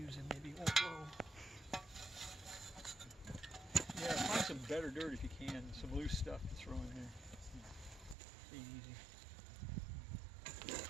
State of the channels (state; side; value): drops out; left; at 8.2 s